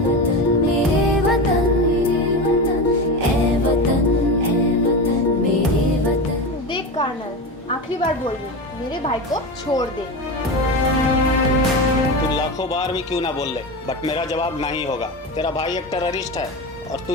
देख कर्नल, आखिरी बार बोल रही हूँ, मेरे भाई को छोड़ दे। तू लाखों बार भी क्यों ना बोल ले, बट मेरा जवाब नहीं होगा। तेरा भाई एक टेररिस्ट है और तू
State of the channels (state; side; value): normal; both; correlation 0.22